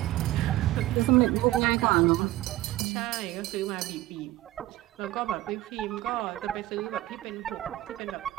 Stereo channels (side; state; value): left; quieter; 16.4 dB